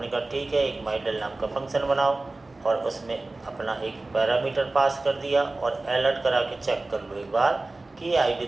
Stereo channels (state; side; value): quieter; left; 3.1 dB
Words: कहा ठीक है, एक माई डेल नाम का फंक्शन बनाओ और उसमें अपना एक पैरामीटर पास कर दिया, और अलर्ट करा के चेक कर लो एक बार कि ये आईडी